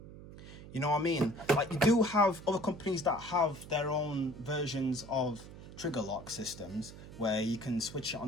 You know what I mean? Like, you do have other companies that have their own versions of trigger lock systems where you can switch it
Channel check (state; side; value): noise; right; hum, 15 dB below the sound